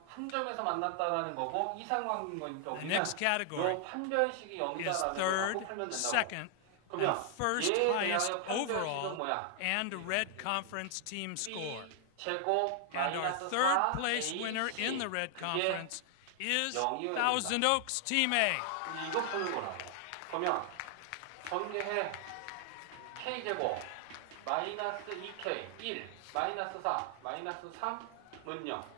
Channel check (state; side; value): different; both; correlation 0.00